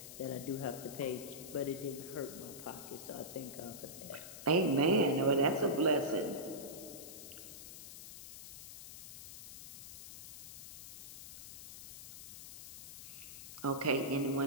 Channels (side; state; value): left; noise; hiss, 11 dB below the sound